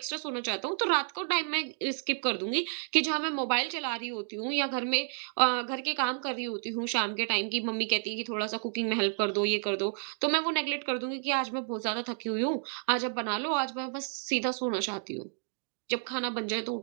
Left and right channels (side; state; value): left; silent; digital silence